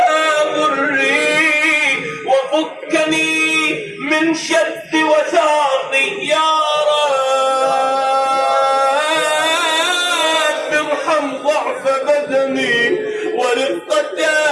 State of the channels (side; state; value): both; identical; correlation 1.00